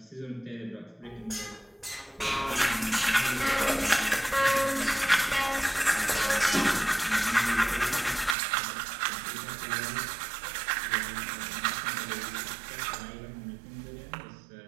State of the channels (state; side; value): drops out; left; at 8.3 s